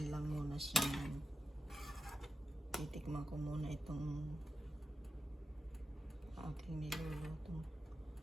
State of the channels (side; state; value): both; normal; correlation 0.89